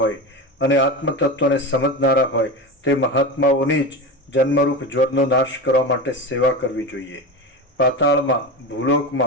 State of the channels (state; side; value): normal; both; correlation 0.24